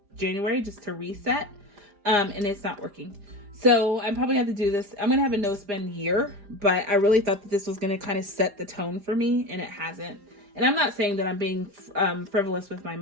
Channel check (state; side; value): late; left; 4.9 ms